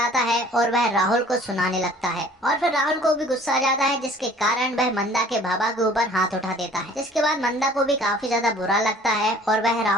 है और वह राहुल को सुनाने लगता है और फिर राहुल को भी गुस्सा आ जाता है, जिसके कारण वह मंदा के बाबा के ऊपर हाथ उठा देता है। जिसके बाद मंदा को भी काफी ज्यादा बुरा लगता है और वह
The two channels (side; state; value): both; normal; correlation 0.52